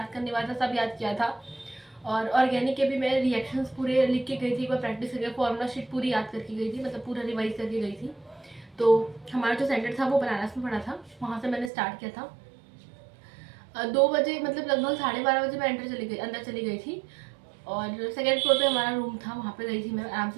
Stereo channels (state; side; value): drops out; left; at 11.7 s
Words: करने वाला था सब याद किया था, और ऑर्गेनिक के भी मैं रिएक्शंस पूरे लिख के गई थी, एक बार प्रैक्टिस करके फॉर्मूला शीट पूरी याद करके गई थी, मतलब पूरा रिवाइज करके गई थी। तो हमारा जो सेंटर था वो बनारस में पड़ा था, वहाँ से मैंने स्टार्ट किया था। 2 बजे मतलब लगभग 12:30 बजे मैं अंदर चली गई थी, और सेकेंड फ्लोर पे हमारा रूम था, वहाँ पे गई थी मैं, आराम